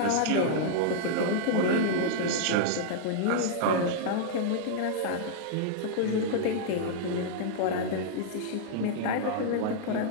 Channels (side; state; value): both; different; correlation -0.01